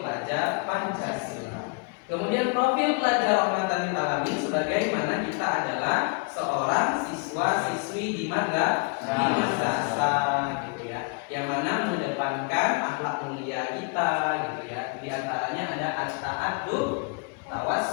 Pancasila. Kemudian profil pelajar rahmatan lil alamin sebagaimana kita adalah seorang siswa-siswi di madrasah gitu ya. Yang mana mengedepankan akhlak mulia kita gitu ya. Di antaranya ada at-ta'addub,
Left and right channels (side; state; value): right; quieter; 33.3 dB